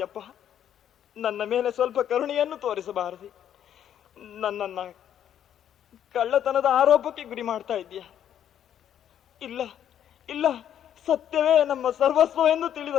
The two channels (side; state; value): right; quieter; 10.0 dB